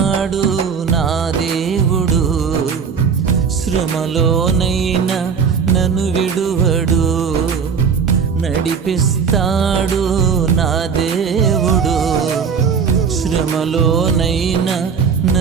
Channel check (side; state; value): left; quieter; 6.3 dB